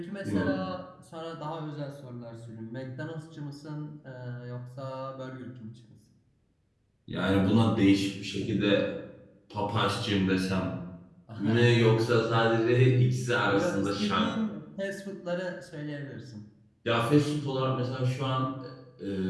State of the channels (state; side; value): identical; both; correlation 1.00